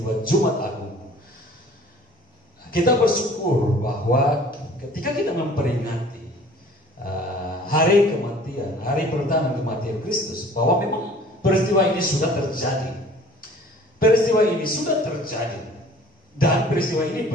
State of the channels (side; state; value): both; normal; correlation 0.50